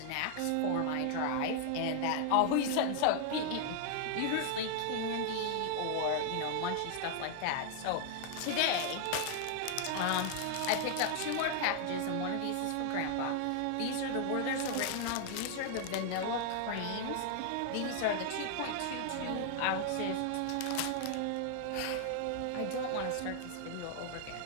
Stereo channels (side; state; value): both; different; correlation 0.00